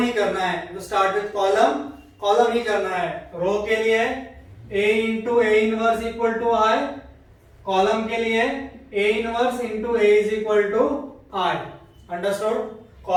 करना है. तो स्टार्ट विथ कॉलम, कॉलम ही करना है. रो के लिए A into A inverse equal to I, column के लिए A inverse into A is equal to I. Understood?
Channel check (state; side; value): identical; both; correlation 1.00